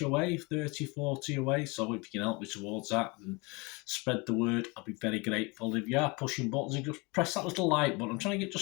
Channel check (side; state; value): right; quieter; 27.5 dB